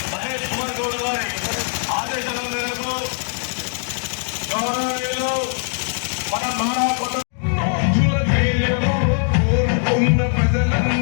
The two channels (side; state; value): right; silent; 55 dB below the other